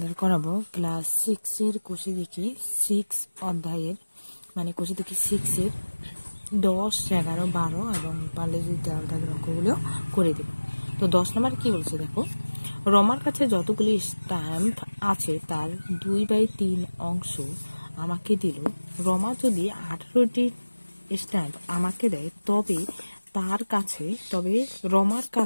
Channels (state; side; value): inverted; both; correlation -1.00